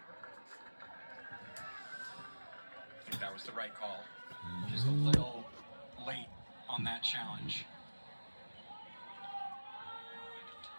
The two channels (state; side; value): inverted; both; correlation -1.00